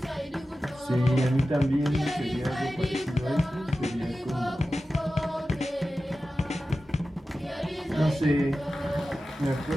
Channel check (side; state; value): both; normal; correlation 0.94